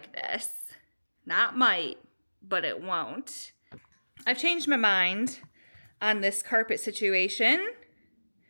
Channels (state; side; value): inverted; both; correlation -1.00